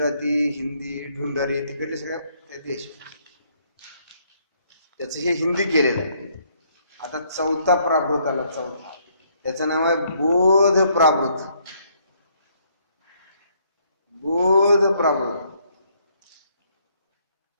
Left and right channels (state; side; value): inverted; both; correlation -0.68